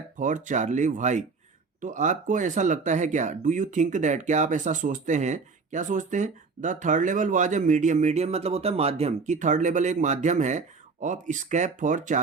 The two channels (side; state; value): left; quieter; 4.6 dB